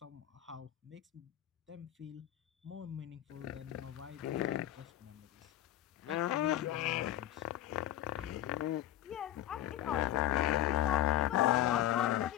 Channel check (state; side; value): quieter; right; 12.8 dB